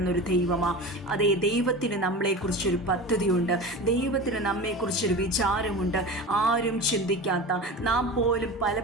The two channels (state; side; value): normal; both; correlation 0.30